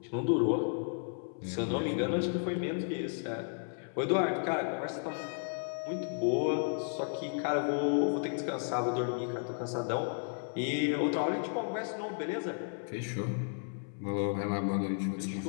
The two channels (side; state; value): right; silent; 55 dB below the other